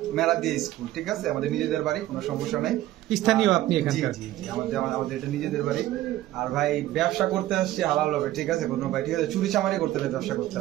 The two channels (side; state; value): left; quieter; 14.8 dB